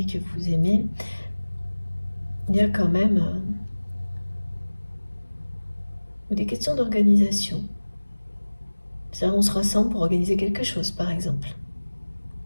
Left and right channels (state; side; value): inverted; both; correlation -1.00